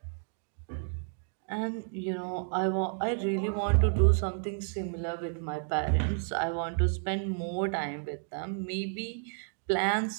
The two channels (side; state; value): left; silent; 57 dB below the other